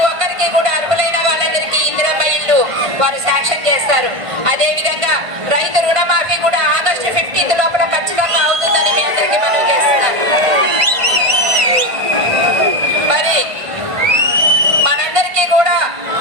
ఒక్కరికి కూడా అర్హులైన వాళ్ళందరికీ ఇందిరమ్మ ఇల్లు వారు శాంక్షన్ చేస్తారు. అదే విధంగా రైతు రుణమాఫీ కూడా ఆగస్టు 15 లోపల ఖచ్చితంగా అవుతుందని మీ అందరికీ మనవి చేస్తున్నాను. మరి మనందరికీ కూడా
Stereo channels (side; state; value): left; late; 1.5 ms